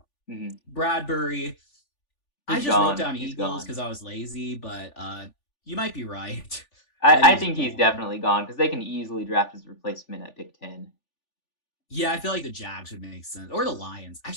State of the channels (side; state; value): right; late; 3.4 ms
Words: Mm-hmm. Bradbury, I He's just wrote gone. down He's Eagles gone. because I was lazy, but you might be right that I he's think he's gone. definitely gone because they can easily draft his replacement at pick 10. Yeah, I feel like the Jags would make sense, or the Lions.